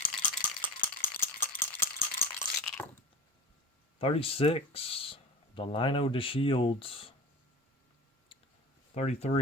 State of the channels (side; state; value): both; normal; correlation 0.33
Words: $36. Delino DeShields.